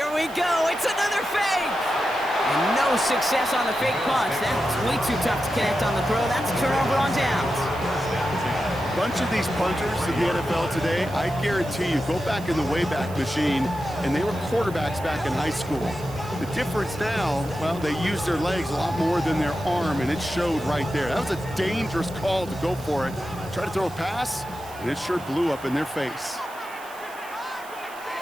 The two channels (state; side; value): noise; right; hiss, 20 dB below the sound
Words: we go. It's another fake. And no success on the fake punch. That's way too tough to connect on the throw. That's a turnover on downs. A bunch of these punters in the NFL today, I guarantee you, go back in the Wayback Machine, and they were quarterbacks back in high school. The difference now, well, they use their legs a lot more than their arm, and it showed right there. That was a dangerous call to go for it. Try to throw a pass, and it sure blew up in their face.